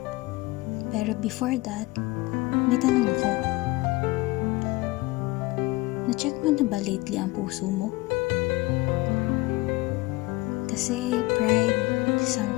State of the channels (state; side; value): quieter; right; 21.7 dB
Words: Pero before that, may tanong ako. Na-check mo na ba lately ang puso mo? Kasi pride,